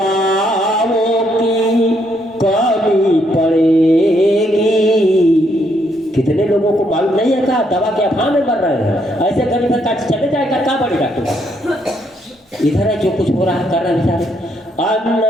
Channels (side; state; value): both; normal; correlation 0.73